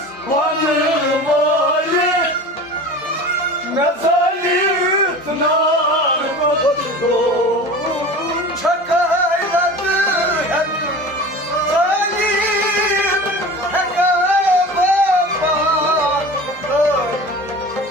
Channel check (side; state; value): both; normal; correlation 0.36